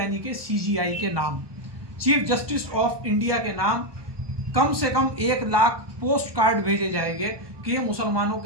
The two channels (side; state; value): left; late; 1.2 ms